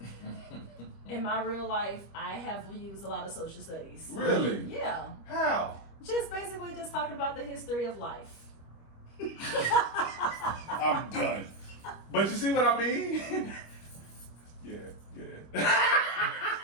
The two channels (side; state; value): right; late; 25 ms